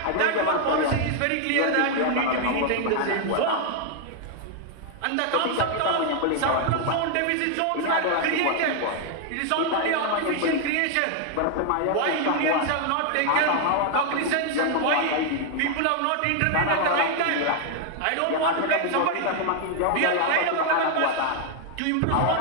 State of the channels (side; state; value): both; different; correlation 0.00